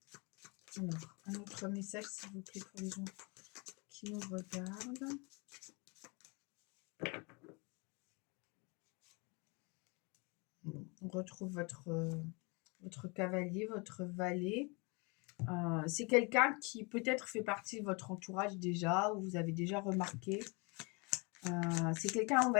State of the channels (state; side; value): quieter; right; 30.3 dB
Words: Alors, un autre message, s'il vous plaît, pour les gens qui nous regardent. Bon, on retrouve votre cavalier, votre valet. C'est quelqu'un qui peut-être fait partie de votre entourage déjà, ou vous avez déjà remarqué. C'est quelqu'un, on